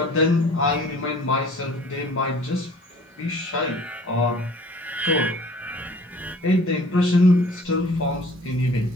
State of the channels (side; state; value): both; normal; correlation 0.50